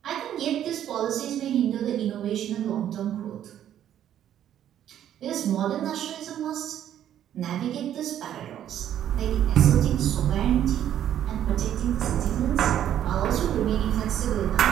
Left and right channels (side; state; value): left; quieter; 10.8 dB